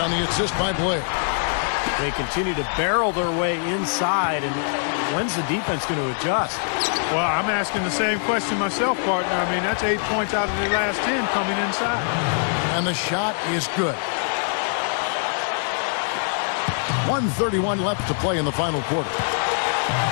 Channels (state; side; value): silent; right; 63 dB below the other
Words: the assist by Blair. They continue to barrel their way inside, and when's the defense going to adjust? Well, I'm asking the same question myself, partner. I mean, that's 8 points out of the last 10 coming inside. And the shot is good. 1:31 left to play in the final quarter.